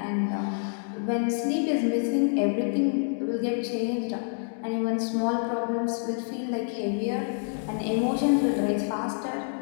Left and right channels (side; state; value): right; silent; 60 dB below the other